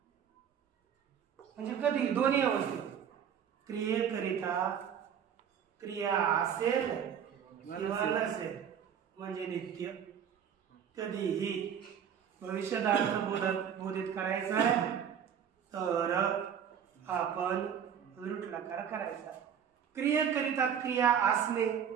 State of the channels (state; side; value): quieter; left; 8.3 dB